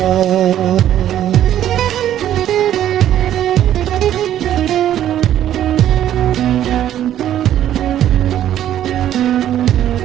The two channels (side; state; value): left; quieter; 11.5 dB